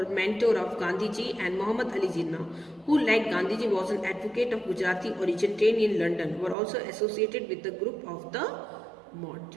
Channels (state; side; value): drops out; left; at 6.6 s